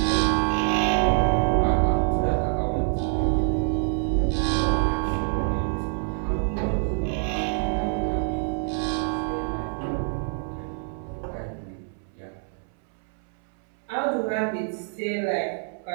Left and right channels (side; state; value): left; silent; 61 dB below the other